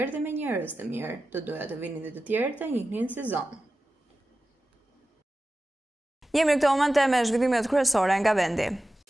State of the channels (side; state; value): both; normal; correlation 0.94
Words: dhe me njerëz të mirë. Të doja të vinin dhe të tjerë të njihnin si zonë. Jemi në këto momente me zhvillimet kryesore nga vendi.